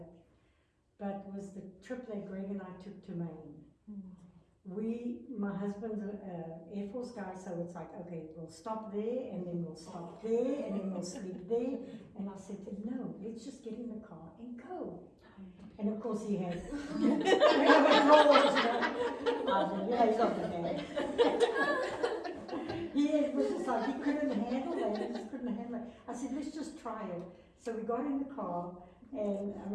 But was the trip that Greg and I took to Maine. My husband's an Air Force guy, so it's like, okay, we'll stop there, and then we'll stop there, and then we'll sleep there. And I said to him, no, let's just get in the car and go. And of course he had, he's not the bad. He was just like, he couldn't handle it, he just couldn't handle it. I said, let's just try it. So we got in the car, and I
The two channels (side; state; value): both; identical; correlation 1.00